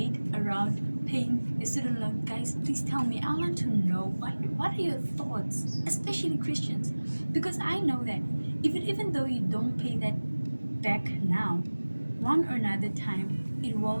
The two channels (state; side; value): inverted; both; correlation -1.00